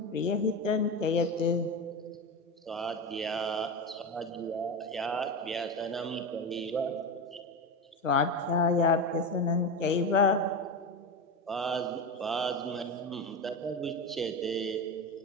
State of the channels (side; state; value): both; normal; correlation 0.20